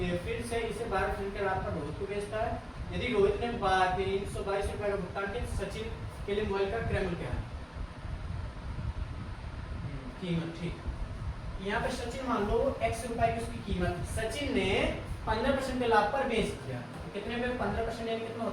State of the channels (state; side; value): identical; both; correlation 1.00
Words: फिर से इसे 12% के लाभ पर रोहित को बेचता है। यदि रोहित ने 322 रुपए का भुगतान किया, सचिन के लिए मोबाइल का क्रय मूल्य क्या है, कीमत, ठीक। यहाँ पे सचिन मान लो x रुपए की उसकी कीमत, सचिन ने 15% के लाभ पर बेच दिया, तो कितने पे 15% यानी कितना